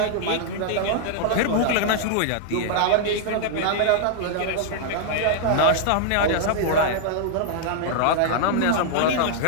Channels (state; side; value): different; both; correlation -0.01